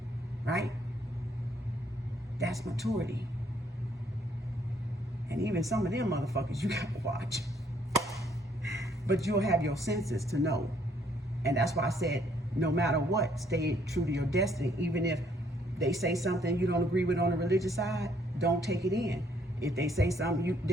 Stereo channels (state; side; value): normal; both; correlation 0.67